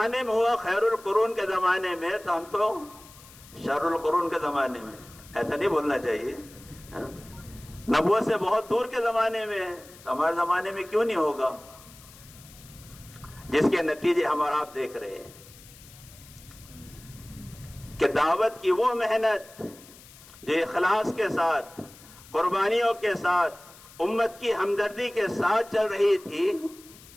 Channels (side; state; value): left; noise; hiss, 21 dB below the sound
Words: میں ہوا خیر القرون کے زمانے میں، تو ہم تو شر القرون کے زمانے میں، ایسا نہیں بولنا چاہیے۔ نہ نبوت سے بہت دور کے زمانے میں ہے، تو ہمارے زمانے میں کیوں نہیں ہوگا؟ جس کے نتیجے ہم اور آپ دیکھ رہے ہیں کہ دعوت کی وہ محنت جو اخلاص کے ساتھ، قربانیوں کے ساتھ، امت کی ہمدردی کے ساتھ چل رہی تھی